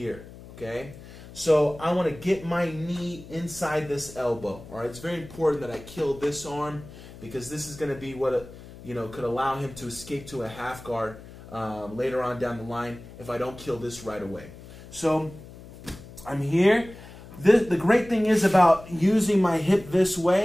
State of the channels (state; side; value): noise; left; hum, 17 dB below the sound